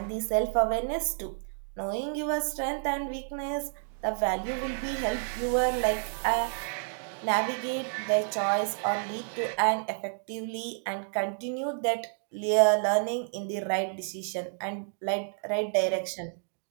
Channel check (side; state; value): left; silent; 58 dB below the other